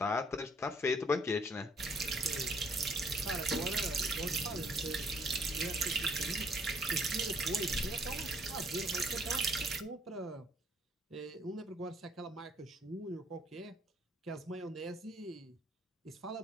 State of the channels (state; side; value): normal; both; correlation 0.63